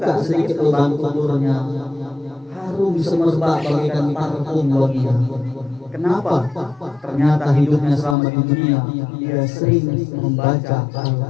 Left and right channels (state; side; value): drops out; right; at 8.2 s